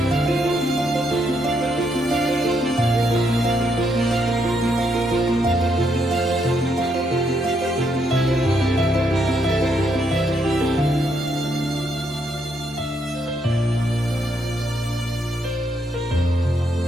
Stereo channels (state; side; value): normal; both; correlation 0.76